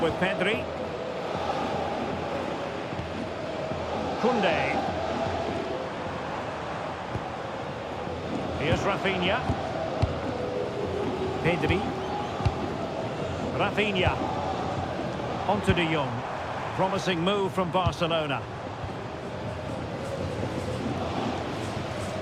Pedri. Koundé. Here's Rafinha. Pedri. Rafinha. Onto De Jong. Promising move from Barcelona.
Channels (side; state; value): both; identical; correlation 1.00